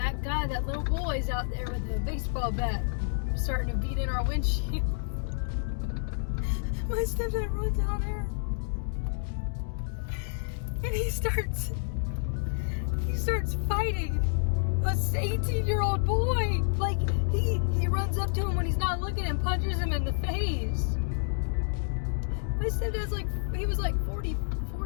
guy, that little boy's out there with a baseball bat, starting to beat in our windshield. My stepdad runs out there, and he starts fighting a 18-year-old boy. Like, he runs up to him when he's not looking and punches him in the face. My stepdad's like, he was like 40,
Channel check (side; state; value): right; silent; digital silence